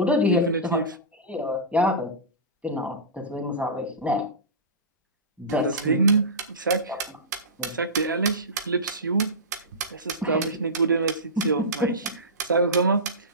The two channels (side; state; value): both; normal; correlation -0.18